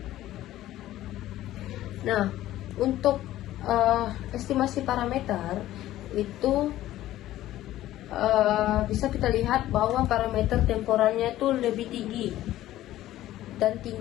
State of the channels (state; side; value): quieter; right; 14.4 dB